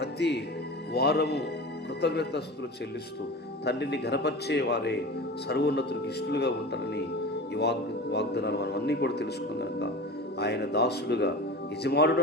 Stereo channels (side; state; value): both; normal; correlation 0.32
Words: వారము కృతజ్ఞతాస్తుతులు చెల్లిస్తూ తండ్రిని ఘనపరిచే వారే సర్వోన్నతునికి ఇష్టలుగా ఉంటారని ఈ వాగ్దానాలు మనం అన్నీ కూడా తెలుసుకున్నాం కనుక ఆయన దాసుడుగా